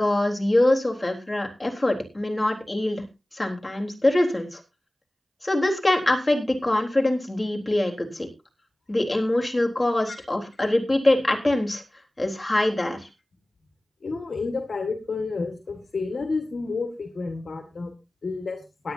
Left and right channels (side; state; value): both; normal; correlation 0.98